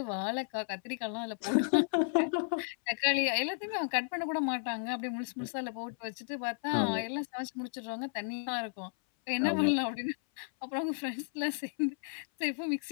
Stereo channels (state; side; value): silent; right; 56 dB below the other